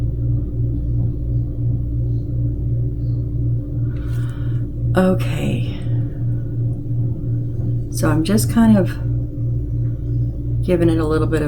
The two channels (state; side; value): identical; both; correlation 1.00